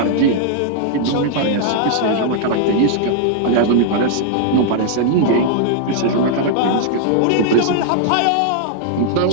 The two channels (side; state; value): both; different; correlation -0.01